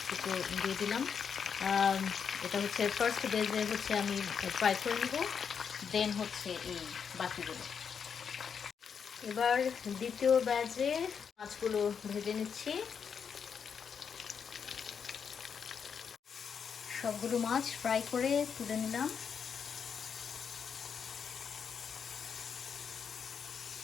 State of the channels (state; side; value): quieter; right; 6.8 dB